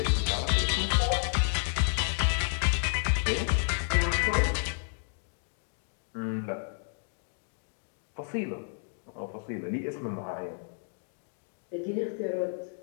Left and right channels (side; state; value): right; silent; digital silence